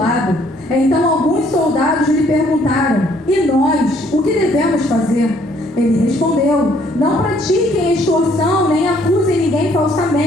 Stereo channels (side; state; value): both; normal; correlation 0.64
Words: Então alguns soldados lhe perguntaram: E nós, o que devemos fazer? Ele respondeu: Não pratiquem extorsão, nem acusem ninguém